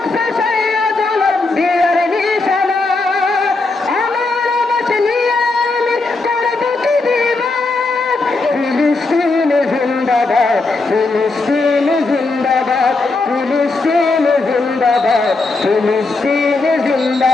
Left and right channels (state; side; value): quieter; right; 3.5 dB